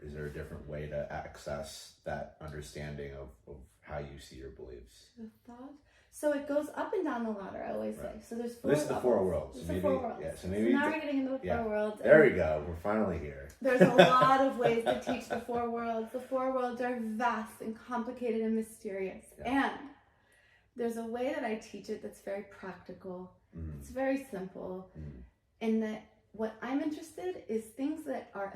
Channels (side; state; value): both; identical; correlation 1.00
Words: is there a different way to access that understanding of how you see your beliefs? The thought? So it goes up and down the ladder, I always say. So there's 4 This is the 4 worlds. It's the 4 worlds. Yeah, so now we're getting into the 4 worlds. There we go. We're finally here. There's a lot of ways to teach the 4 worlds. The 4 worlds are vast and complicated and mysterious. Yeah. And there's a way that I teach it that's very practical. It's very simple. And that what I'm interested is things that are